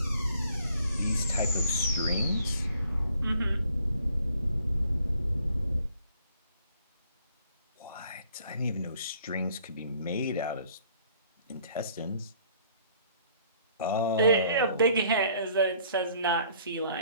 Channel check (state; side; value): inverted; both; correlation -0.60